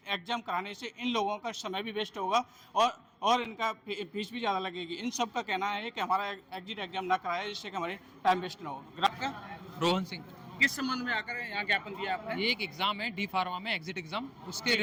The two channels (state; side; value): identical; both; correlation 1.00